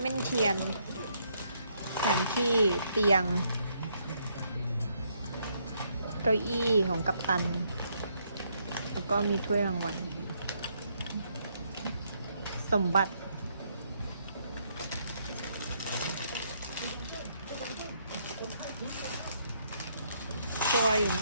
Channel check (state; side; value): inverted; both; correlation -0.73